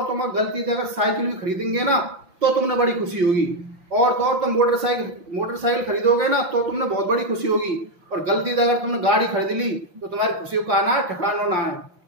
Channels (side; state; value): left; late; 5.8 ms